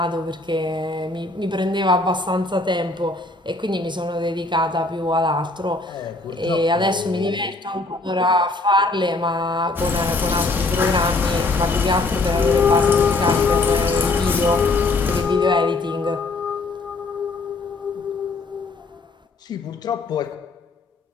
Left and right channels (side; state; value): right; quieter; 3.2 dB